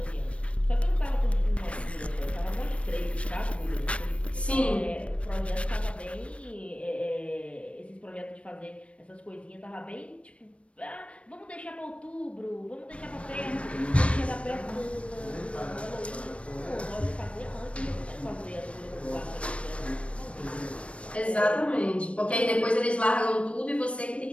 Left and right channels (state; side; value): late; right; 0.062 ms